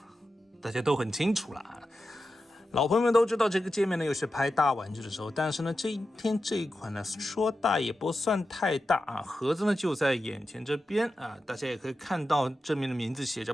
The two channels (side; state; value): both; normal; correlation 0.91